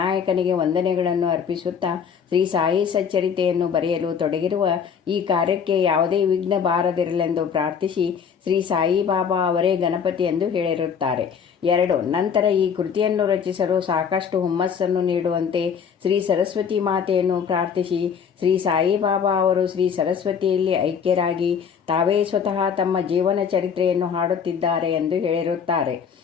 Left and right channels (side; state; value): right; quieter; 7.0 dB